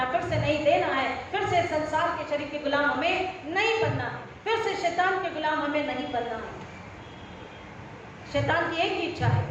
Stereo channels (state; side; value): identical; both; correlation 1.00